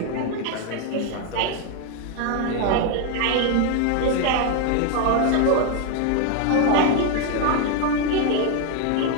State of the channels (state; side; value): different; both; correlation 0.01